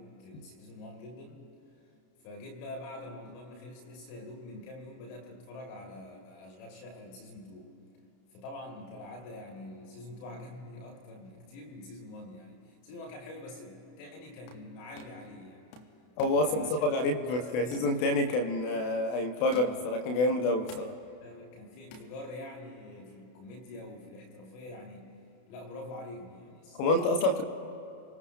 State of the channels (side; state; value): right; late; 32 ms